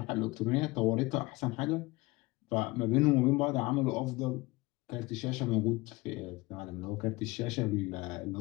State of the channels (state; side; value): quieter; right; 22.2 dB